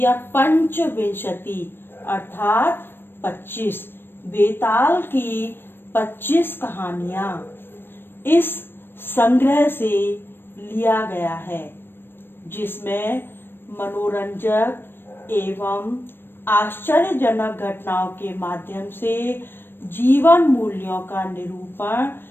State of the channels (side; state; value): right; late; 0.10 ms